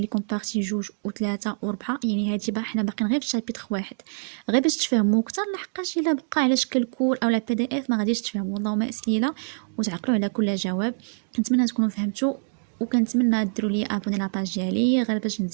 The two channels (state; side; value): silent; left; digital silence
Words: لكم بارتي جوج وثلاثة وربعة، يعني هادي حنا باقيين غير في شابيتر واحد، غير باش تفهموا اكثر، لحقاش الا بقى على شكل كور او بي دي اف ما غاديش تفهموا. اللهم اسئله وتعقلوا على كل جواب. كنتمنى تكونوا فهمتوا، وكنتمنى ديروا لي ابوني لاباج ديالي غير باش